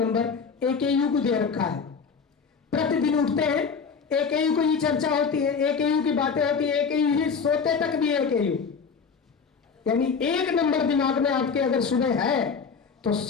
AKU को दे रखा है। प्रतिदिन उठते हैं, AKU को ही चर्चा होती है, AKU की बातें होती है, AKU ही सोते तक भी AKU, यानी 1 नंबर दिमाग में आपके अगर सुबह है तो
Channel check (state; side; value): quieter; right; 5.7 dB